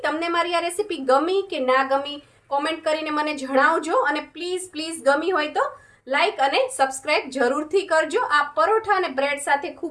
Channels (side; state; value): both; identical; correlation 1.00